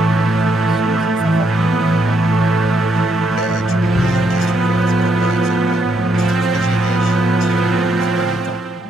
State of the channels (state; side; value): normal; both; correlation 0.76